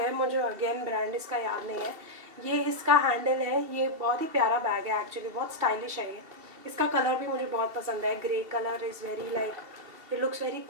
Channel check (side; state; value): left; late; 2.7 ms